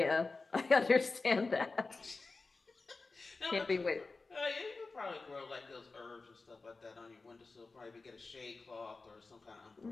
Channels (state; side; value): quieter; right; 3.8 dB